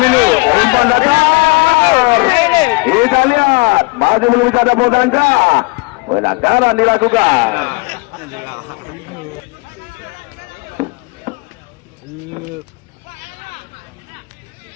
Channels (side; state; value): right; quieter; 26.8 dB